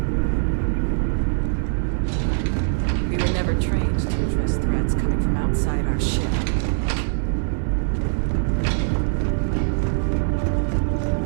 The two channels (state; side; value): silent; left; 64 dB below the other